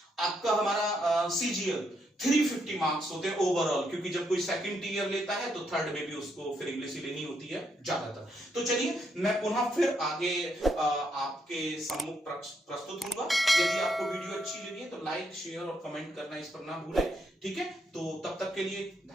आपका हमारा CGL 350 मार्क्स होते हैं ओवरऑल, क्योंकि जब कोई सेकंड ईयर लेता है तो थर्ड में भी उसको फिर इंग्लिश ही लेनी होती है ज्यादातर। तो चलिए मैं पुनः फिर आगे आपके सम्मुख प्रस्तुत होऊंगा। यदि आपको वीडियो अच्छी लगी है तो लाइक, शेयर और कमेंट करना इस पर ना भूलें। ठीक है, तो तब तक के लिए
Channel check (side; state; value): both; normal; correlation 0.77